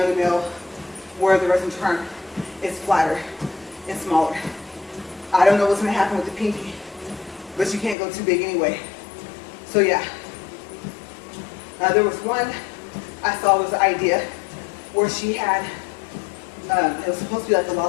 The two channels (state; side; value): drops out; right; at 8.0 s